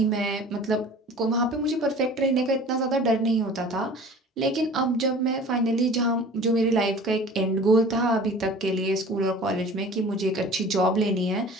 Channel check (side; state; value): both; normal; correlation 0.43